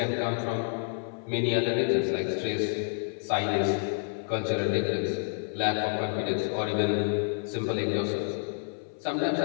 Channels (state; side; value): silent; right; 58 dB below the other